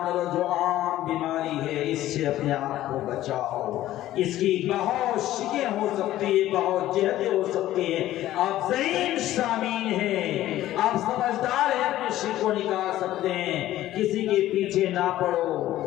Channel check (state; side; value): quieter; right; 14.2 dB